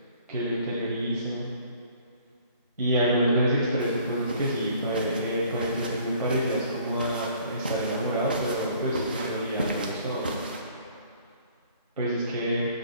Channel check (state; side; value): inverted; both; correlation -0.56